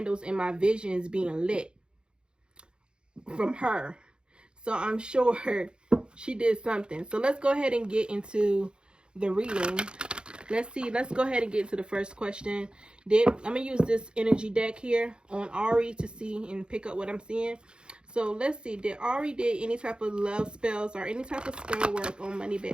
in my visions being lit from her, so I'm sure she did something. So let's go ahead and get into the reading. Let's go ahead and get into the first question. I'm gonna use this energy deck here on Ari to see and pick up what I'm seeing. So let's see, did Ari did any type of love spells or any type of spell work on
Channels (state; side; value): late; left; 0.051 ms